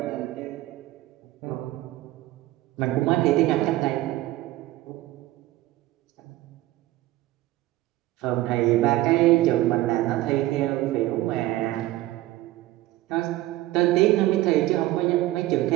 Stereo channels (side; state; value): left; quieter; 16.5 dB